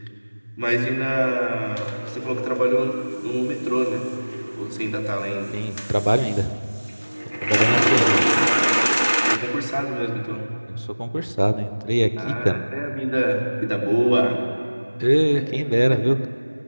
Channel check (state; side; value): inverted; both; correlation -1.00